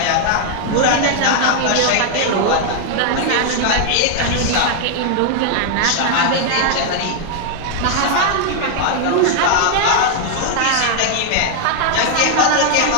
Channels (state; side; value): different; both; correlation 0.00